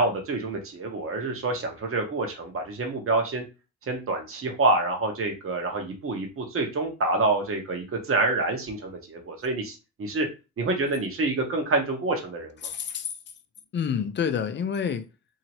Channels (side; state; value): both; normal; correlation -0.08